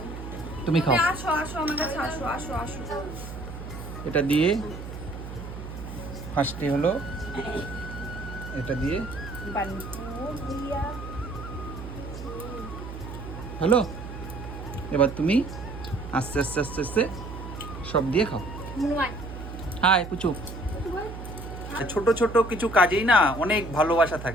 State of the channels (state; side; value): noise; right; hum, 10 dB below the sound